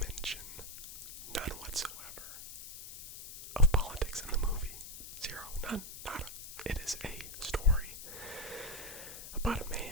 none whatsoever, of politics in the movie. Zero, none, nada. It is a story about a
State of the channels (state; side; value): noise; left; hiss, 11 dB below the sound